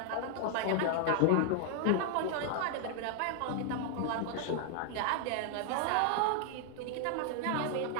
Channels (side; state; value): both; different; correlation 0.00